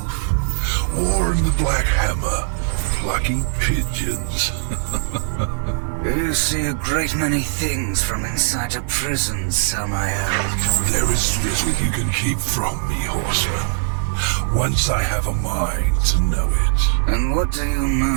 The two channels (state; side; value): silent; left; digital silence